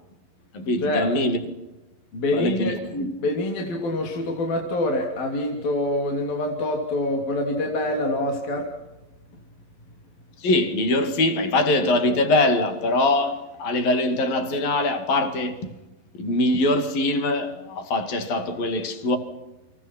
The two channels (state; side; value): late; right; 11 ms